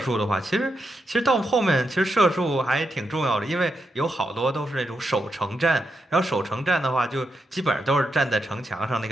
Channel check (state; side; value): normal; both; correlation 0.84